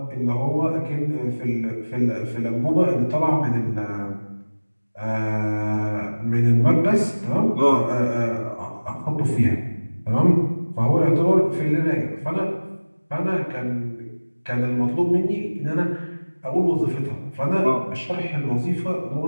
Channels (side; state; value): both; inverted; correlation -1.00